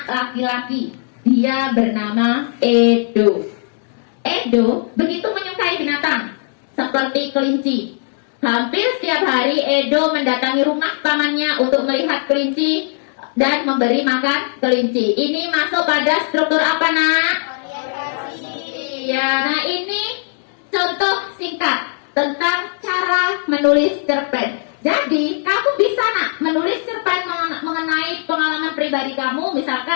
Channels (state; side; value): silent; right; 57 dB below the other